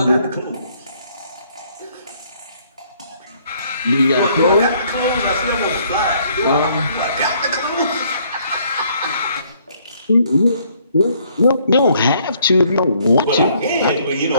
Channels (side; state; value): both; inverted; correlation -0.65